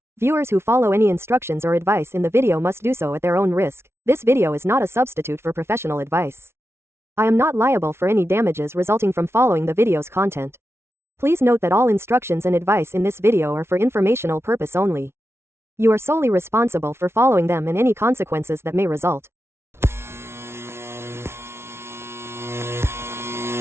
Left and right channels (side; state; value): left; late; 0.12 ms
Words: Viewers who follow any instructions or advice in the video must do so at their own risk. This video is not a substitute for professional advice. I am not liable for any damages resulting from following the video's content. Please note that all instructions and advice in this video are for informational purpose only. You are solely responsible for following them and any consequences that may result.